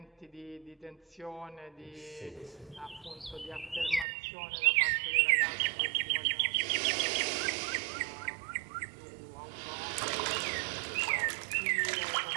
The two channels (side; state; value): left; drops out; at 4.0 s